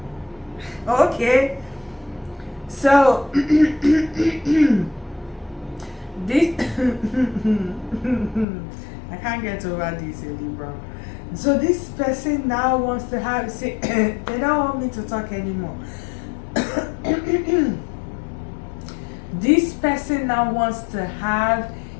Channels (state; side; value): drops out; right; at 8.5 s